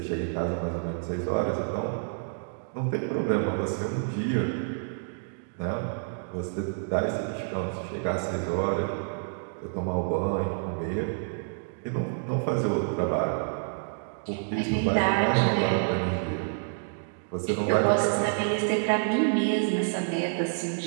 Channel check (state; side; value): silent; left; digital silence